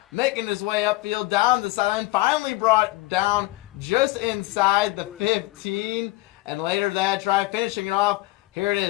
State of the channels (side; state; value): right; quieter; 19.4 dB